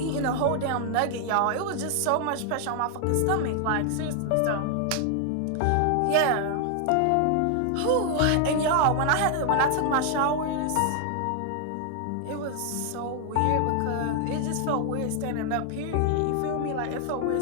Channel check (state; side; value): different; both; correlation 0.00